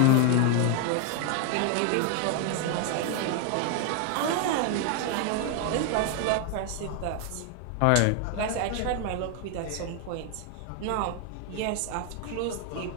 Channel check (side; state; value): both; different; correlation 0.01